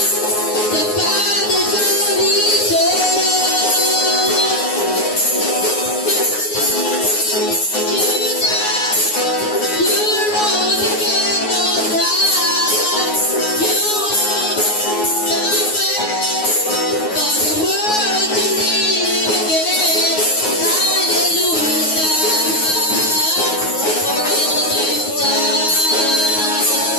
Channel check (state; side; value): late; right; 9.5 ms